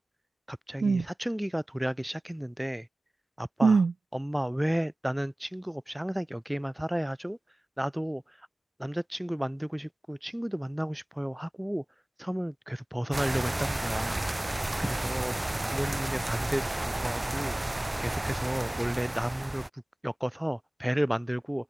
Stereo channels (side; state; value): both; normal; correlation 0.98